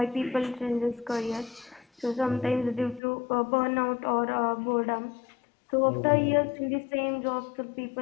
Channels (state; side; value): drops out; right; at 3.0 s